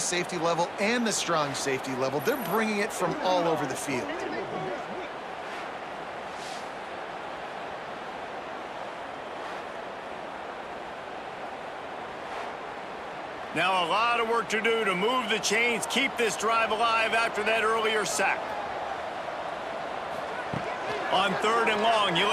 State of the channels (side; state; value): both; identical; correlation 1.00